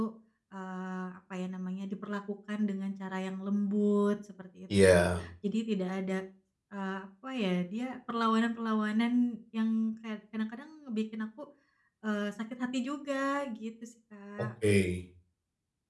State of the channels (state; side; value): identical; both; correlation 1.00